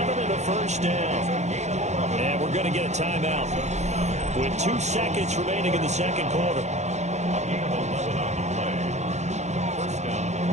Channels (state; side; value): late; left; 0.33 ms